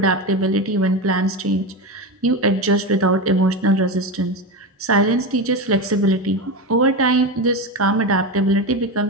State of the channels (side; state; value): both; normal; correlation 0.19